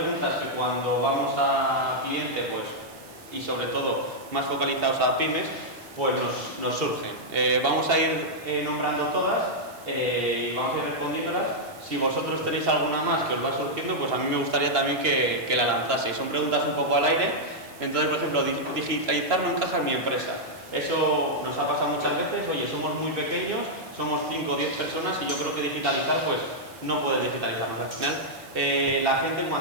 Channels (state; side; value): noise; right; hiss, 22 dB below the sound